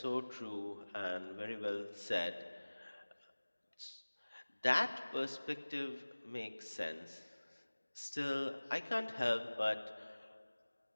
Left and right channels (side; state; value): both; inverted; correlation -1.00